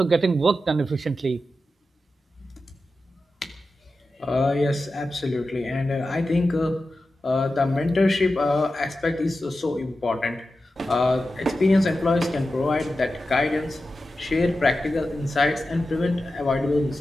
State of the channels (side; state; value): both; normal; correlation 0.92